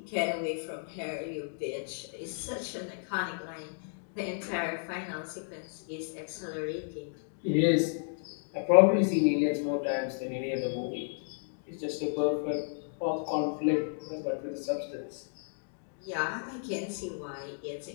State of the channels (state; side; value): silent; right; digital silence